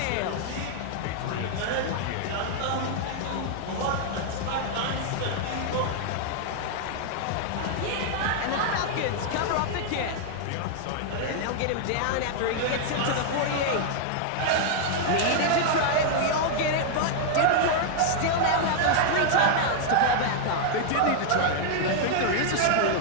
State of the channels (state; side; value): different; both; correlation 0.00